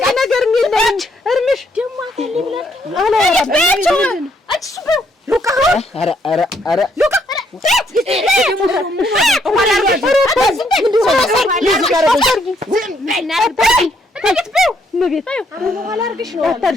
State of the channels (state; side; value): normal; both; correlation 0.71